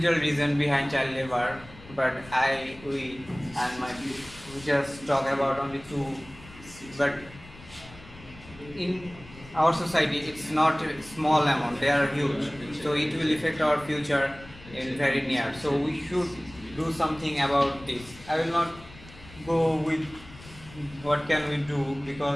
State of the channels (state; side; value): noise; left; rumble, 19 dB below the sound